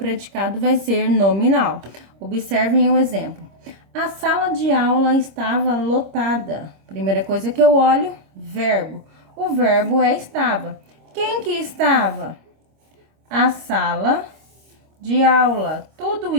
vai ser nominal. Observem o exemplo. A sala de aula estava lotada. Primeira coisa que eu olho, verbo. O verbo é estava. Quem que estava? A sala de aula. Tudo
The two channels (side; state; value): left; late; 26 ms